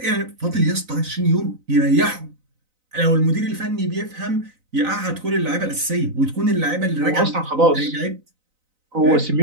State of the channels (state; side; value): late; left; 3.9 ms